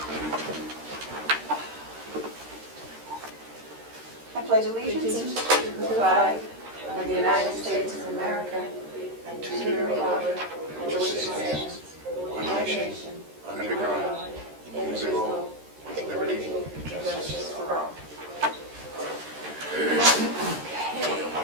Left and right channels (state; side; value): late; left; 13 ms